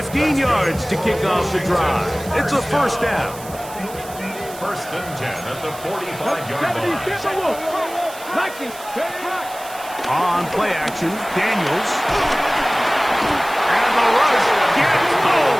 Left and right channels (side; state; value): right; noise; hiss, 16 dB below the sound